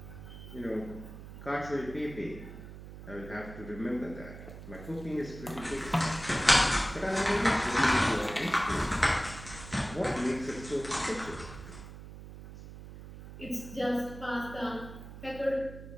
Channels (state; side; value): noise; right; hum, 13 dB below the sound